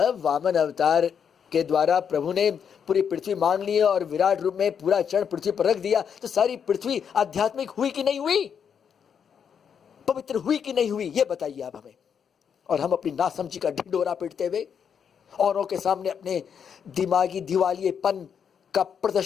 वामन अवतार के द्वारा प्रभु ने पूरी पृथ्वी मान ली और विराट रूप में पूरा चरण पृथ्वी पर रख दिया, तो सारी पृथ्वी आध्यात्मिक हुई कि नहीं हुई, पवित्र हुई कि नहीं हुई, ये बताइए आप हमें। और हम अपनी नासमझी का ढिंढोरा पीटते हुए, औरों के सामने अपने दिमागी दिवालियेपन का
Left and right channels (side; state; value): right; quieter; 7.4 dB